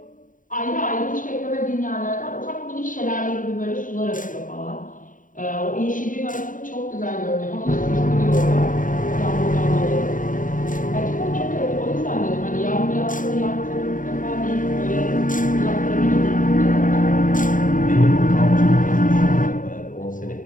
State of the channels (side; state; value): right; late; 0.39 ms